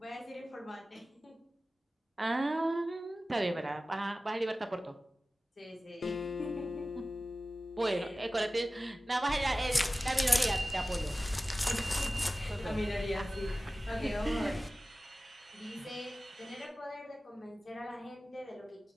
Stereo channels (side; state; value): both; normal; correlation 0.96